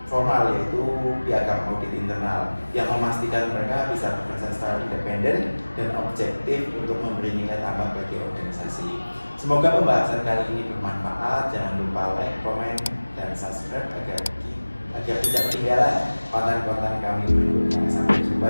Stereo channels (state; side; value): inverted; both; correlation -1.00